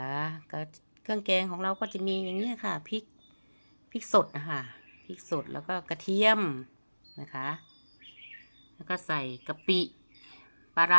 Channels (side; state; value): both; inverted; correlation -1.00